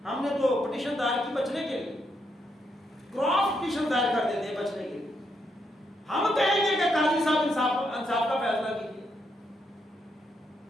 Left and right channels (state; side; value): normal; both; correlation 0.78